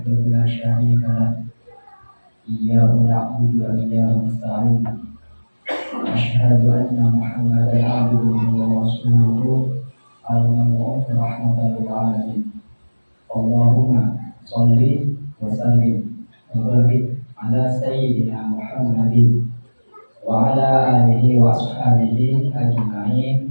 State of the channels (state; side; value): inverted; both; correlation -1.00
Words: la syarika lah. Iyyahu na'budu wa iyyahu nasta'in. Asyhadu anna Muhammadan abduhu wa rasuluhu al-mab'uts rahmatan lil alamin. Allahumma sholli wa sallim wa barik ala sayyidina Muhammadin wa ala alihi wa ashabihi